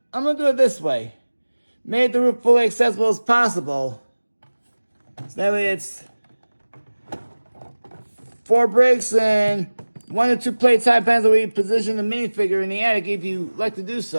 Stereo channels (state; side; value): inverted; both; correlation -1.00